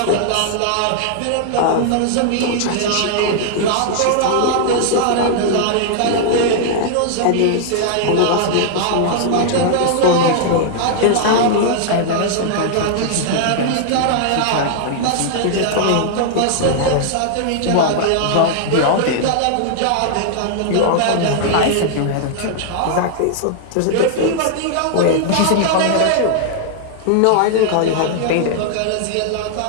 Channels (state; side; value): different; both; correlation -0.01